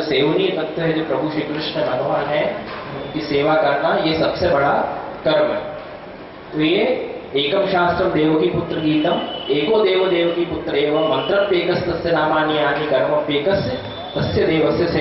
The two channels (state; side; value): identical; both; correlation 1.00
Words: सेवनीय तत्व है, जो प्रभु श्री कृष्ण भगवान है, उनकी सेवा करना ये सबसे बड़ा कर्म है। तो ये एकम शास्त्रम देवकी पुत्र गीतम एको देव देवकी पुत्र एवं मंत्रप्येकस्तस्य नामानि यानि कर्मप्येकस्य तस्य देवस्य